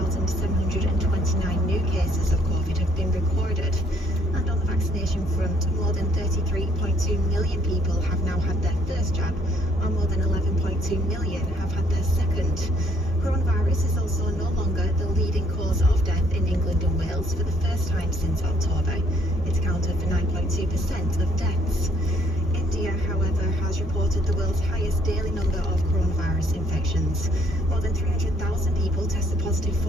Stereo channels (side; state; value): both; normal; correlation 0.65